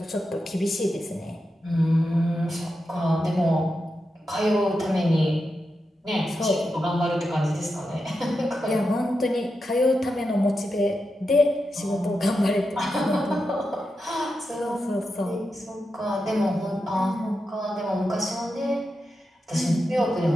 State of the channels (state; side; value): normal; both; correlation 0.88